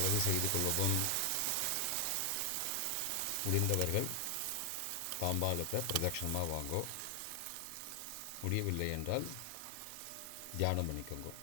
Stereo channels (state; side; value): different; both; correlation 0.00